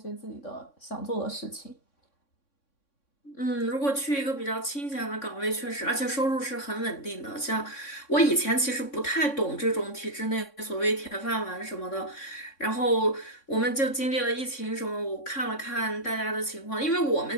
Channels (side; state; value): right; late; 3.6 ms